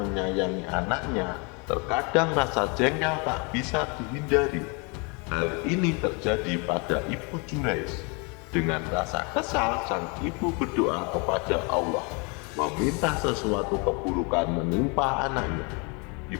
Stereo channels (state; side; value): quieter; right; 32.1 dB